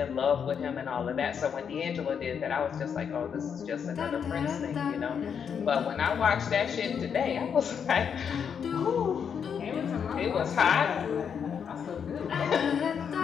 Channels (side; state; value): right; quieter; 7.3 dB